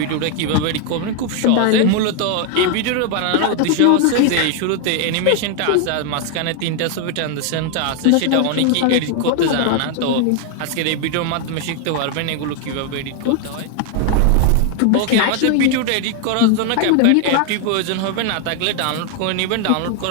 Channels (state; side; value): different; both; correlation 0.00